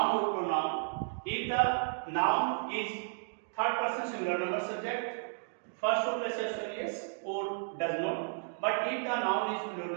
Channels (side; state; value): left; silent; digital silence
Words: or pronoun. If the noun is third person singular number subject, first of places yes or does not. But if the noun is plural